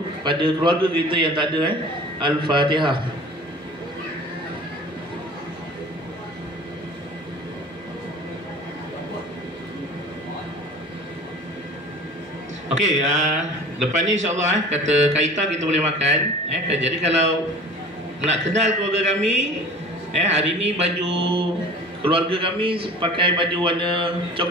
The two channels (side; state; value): both; normal; correlation 0.42